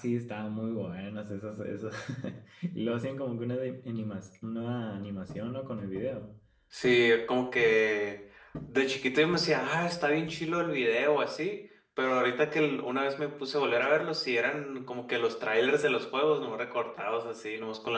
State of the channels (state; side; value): identical; both; correlation 1.00